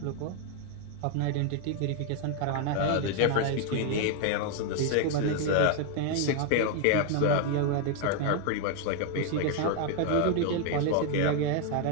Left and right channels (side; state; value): both; different; correlation 0.01